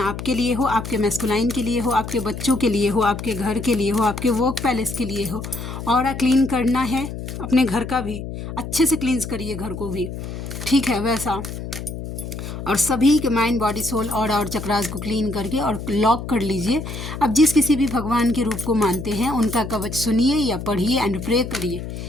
आपके लिए हो, आपके मैस्कुलाइन के लिए हो, आपके बच्चों के लिए हो, आपके घर के लिए हो, आपके वर्क पैलेस के लिए हो। और क्लीन करना है अपने घर का भी, अच्छे से क्लींस करिए घर को भी, ठीक है वैसा। और सभी के माइंड बॉडी सोल और चक्रास को क्लीन करके और लॉक कर लीजिए। अब जिस किसी भी भगवान के रूप को मानते हैं उनका कवच सुनिए या पढ़िए एंड प्रे करिए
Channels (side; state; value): left; noise; hum, 8 dB below the sound